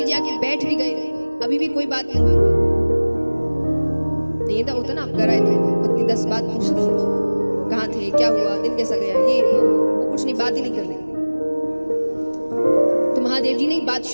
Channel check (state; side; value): inverted; both; correlation -1.00